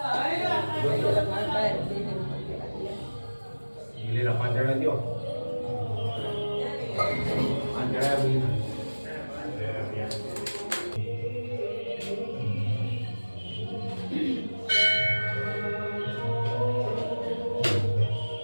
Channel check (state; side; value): inverted; both; correlation -1.00